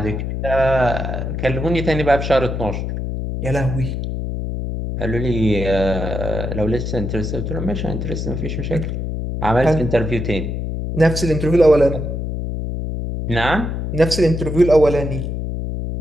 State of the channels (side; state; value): left; noise; hum, 3 dB below the sound